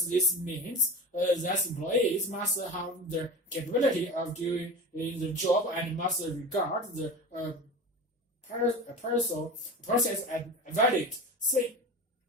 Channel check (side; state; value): both; normal; correlation 0.30